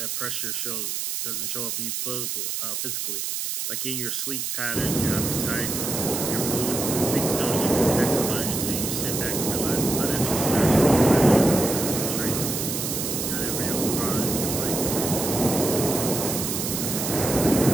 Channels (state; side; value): noise; right; hiss, 3 dB below the sound